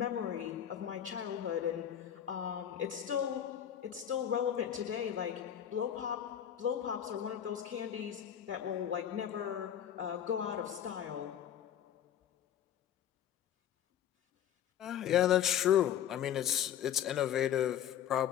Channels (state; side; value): quieter; right; 9.9 dB